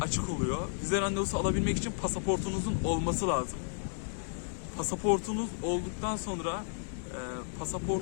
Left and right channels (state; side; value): silent; right; digital silence